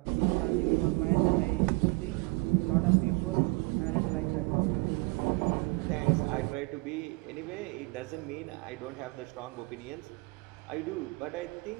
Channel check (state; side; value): quieter; left; 27.8 dB